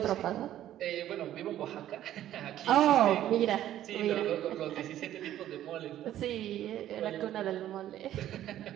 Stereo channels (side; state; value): left; quieter; 12.4 dB